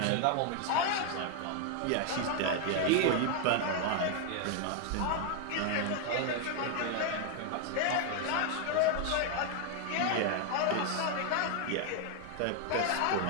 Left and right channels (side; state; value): both; different; correlation 0.01